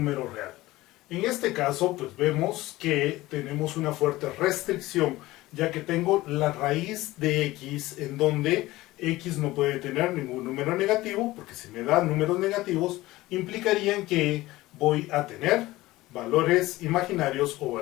real. En este caso, pues vemos que tenemos una fuerte restricción, ya que tengo la raíz de x en donde x no puede tener ningún número negativo, porque si me dan números negativos, implicarían que voy a tener valores imaginarios o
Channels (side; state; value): right; quieter; 18.1 dB